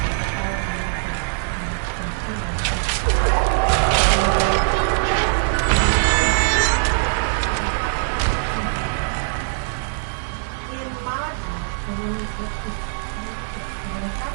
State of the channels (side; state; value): left; silent; 64 dB below the other